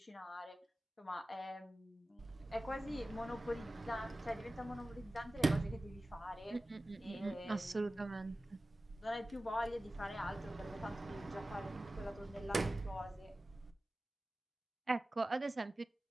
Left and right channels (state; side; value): normal; both; correlation 0.96